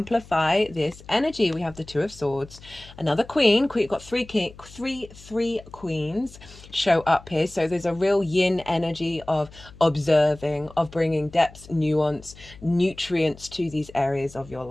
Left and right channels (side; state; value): left; noise; hum, 20 dB below the sound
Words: this energy? We have the Two of Swords, another Queen. We've got three queens show up here. So there's a real yin energy of observing, of bringing depth, nuance, nutrients to these areas of your